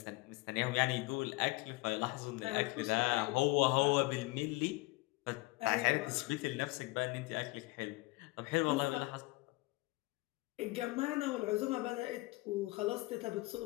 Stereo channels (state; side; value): quieter; right; 23.0 dB